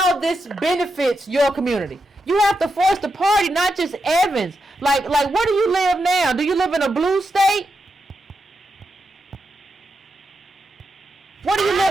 this benefits your community. You have to force the party, not just Evans. Like where do you live now? Do you live in a blue state? Where do you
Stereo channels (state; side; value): normal; both; correlation 0.86